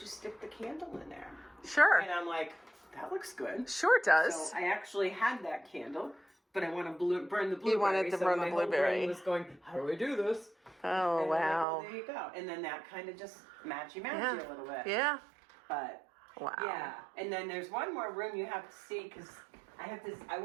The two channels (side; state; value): left; drops out; at 11.7 s